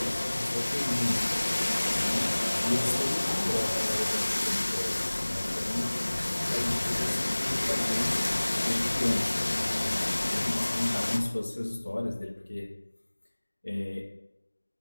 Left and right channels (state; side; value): inverted; both; correlation -1.00